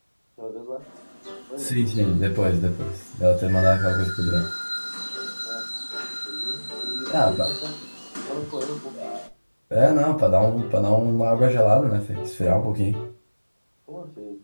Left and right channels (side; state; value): both; inverted; correlation -1.00